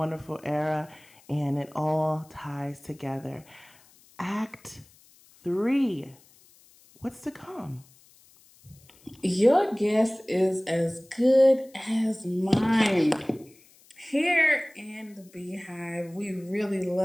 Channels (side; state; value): left; noise; hiss, 28 dB below the sound